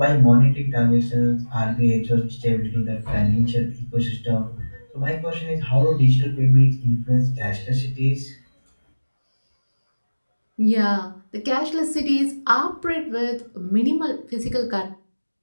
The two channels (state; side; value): inverted; both; correlation -1.00